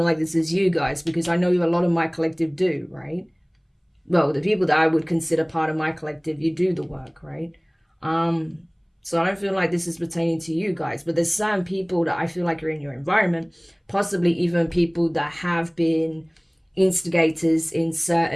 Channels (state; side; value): identical; both; correlation 1.00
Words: like this is you guys, because I know a lot of my collective do, right? Well, the people that I would consider part of my collective, you do the work, right? So I don't feel like this is pertaining to you guys, but there's certain people that I feel like are in your environment, possibly even people that have been instigators in